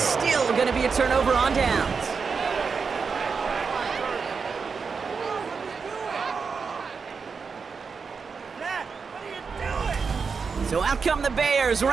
going to be a turnover on downs. So out come the Bears,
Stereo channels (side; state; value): left; quieter; 5.4 dB